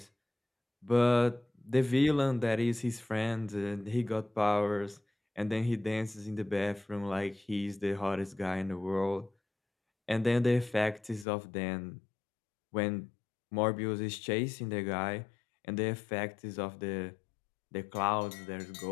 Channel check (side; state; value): right; drops out; at 11.2 s